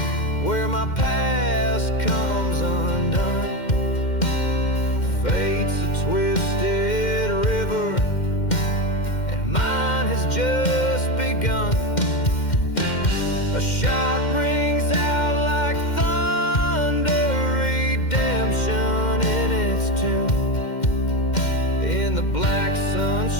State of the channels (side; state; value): right; late; 2.1 ms